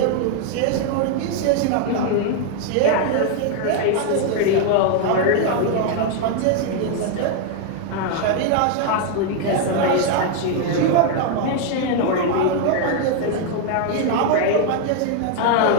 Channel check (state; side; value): different; both; correlation 0.00